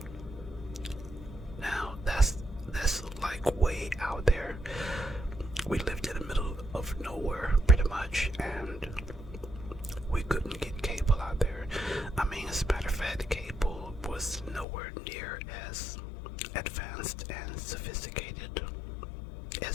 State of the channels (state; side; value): drops out; right; at 14.7 s